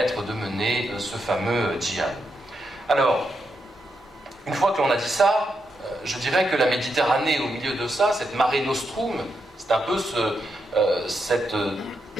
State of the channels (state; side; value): normal; both; correlation 0.83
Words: de mener ce fameux djihad. Alors, une fois que l'on a dit ça, je dirais que la Méditerranée au milieu de ça, cette marée nostrum, c'est un peu cette